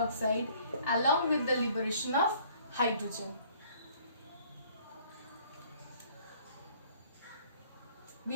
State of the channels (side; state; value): both; inverted; correlation -0.58